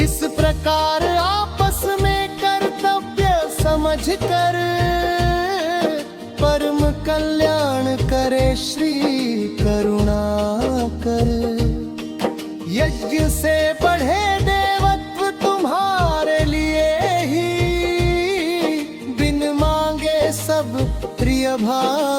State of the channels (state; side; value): identical; both; correlation 1.00